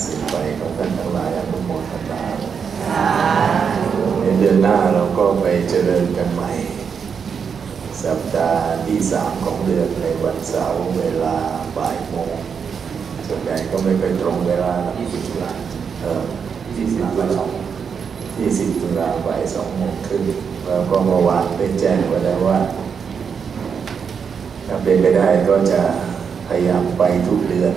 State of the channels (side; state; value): left; quieter; 6.5 dB